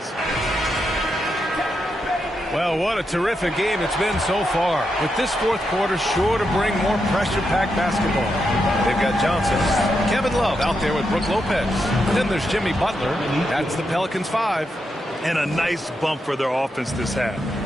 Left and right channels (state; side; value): normal; both; correlation 0.84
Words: Well, what a terrific game it's been so far. With this 4th quarter sure to bring more pressure-packed basketball. They've got Johnson, Kevin Love out there with Brook Lopez. Then there's Jimmy Butler. That's the Pelicans 5. And a nice bump for their offense this half.